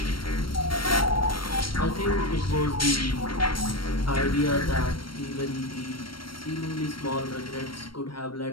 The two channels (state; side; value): late; right; 0.73 ms